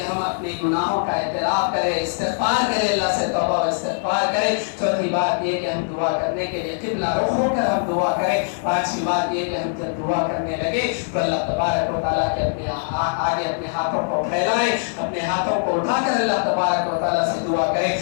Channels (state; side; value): silent; right; digital silence